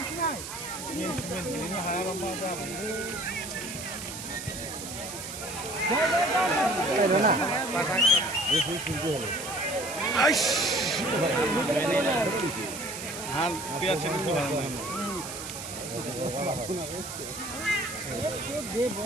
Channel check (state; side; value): noise; right; hiss, 9 dB below the sound